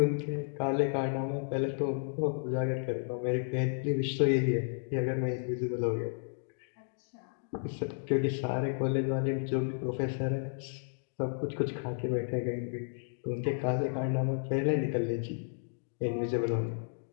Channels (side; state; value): right; silent; digital silence